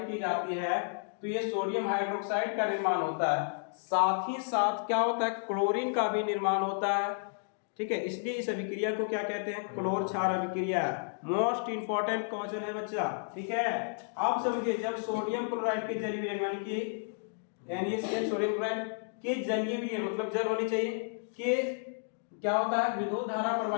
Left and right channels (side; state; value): right; silent; digital silence